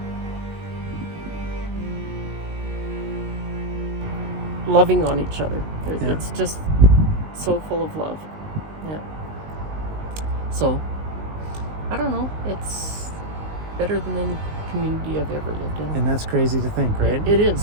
Loving on each other. It's just so full of love. Yeah. So, I don't know. It's better than any community I've ever lived in. And that's crazy to think, right? It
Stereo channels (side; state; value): left; late; 19 ms